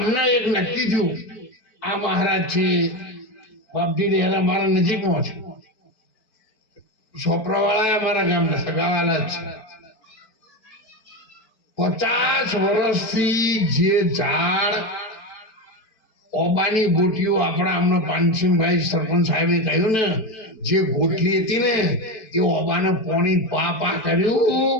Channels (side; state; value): right; late; 4.6 ms